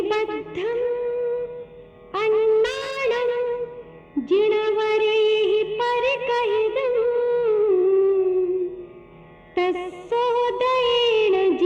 अन्नानं जिनवरेहि परिकहिदुं तस्सोदयेन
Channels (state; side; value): identical; both; correlation 1.00